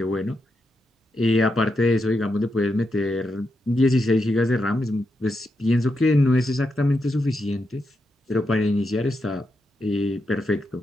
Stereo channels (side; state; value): both; normal; correlation 0.85